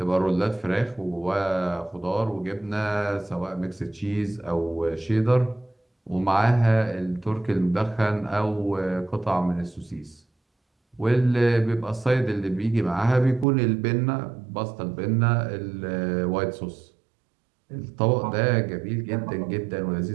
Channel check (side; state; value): left; drops out; at 13.5 s